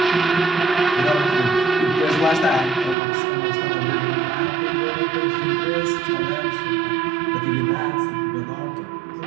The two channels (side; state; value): left; drops out; at 3.0 s